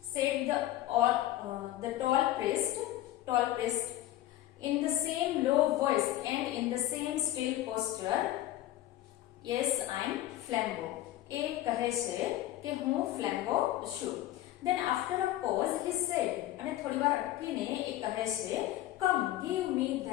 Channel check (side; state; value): right; quieter; 14.4 dB